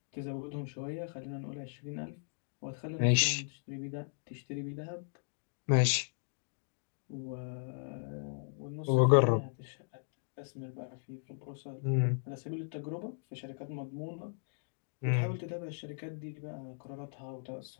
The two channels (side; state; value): right; silent; digital silence